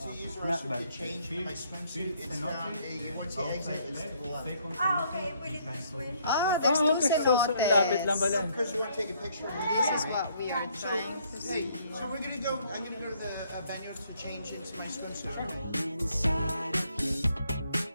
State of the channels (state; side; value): inverted; both; correlation -0.67